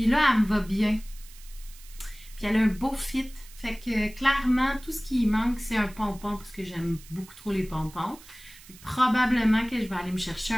là, elle me va bien. Puis elle a un beau fit. Fait que clairement, tout ce qui manque, c'est un pompon, parce que j'aime beaucoup trop les pompons. Probablement que je vais aller me chercher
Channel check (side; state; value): right; noise; hiss, 21 dB below the sound